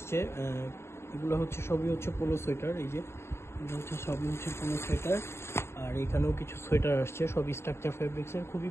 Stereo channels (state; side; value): late; right; 0.12 ms